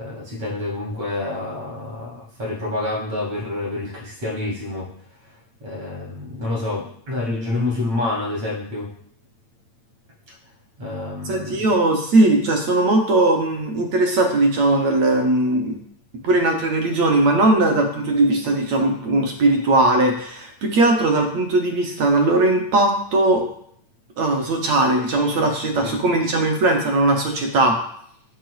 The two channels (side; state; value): left; late; 8.8 ms